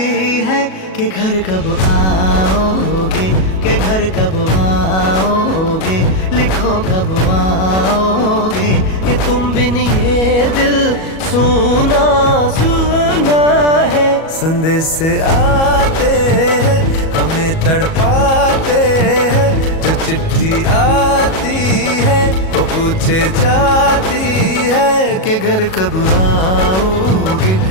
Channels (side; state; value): right; late; 37 ms